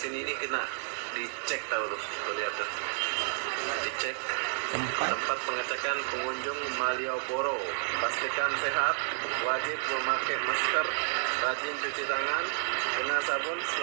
ini kena dicek tahu tuh. Tuh lihat tuh. Dicek. Tempat pengecekan pengunjung Malioboro. Pastikan sehat, wajib memakai masker, rajin cuci tangan dengan sabun,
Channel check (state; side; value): silent; left; 57 dB below the other